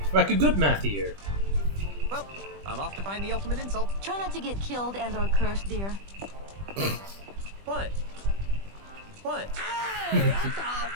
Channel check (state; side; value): late; left; 20 ms